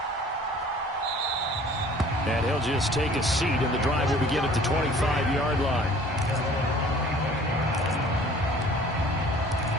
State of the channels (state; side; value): normal; both; correlation 0.50